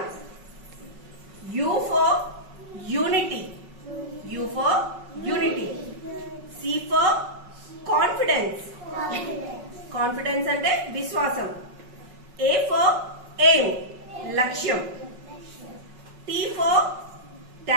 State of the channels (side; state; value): left; late; 5.4 ms